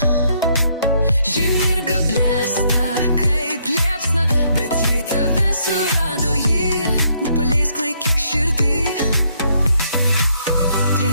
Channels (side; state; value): both; inverted; correlation -0.71